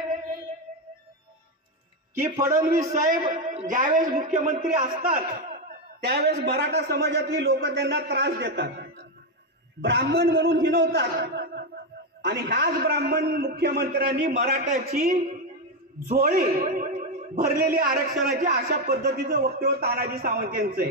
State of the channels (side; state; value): both; normal; correlation 0.08